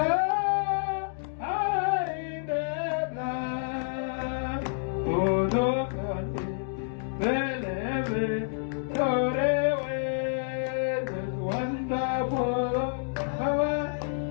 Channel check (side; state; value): right; silent; digital silence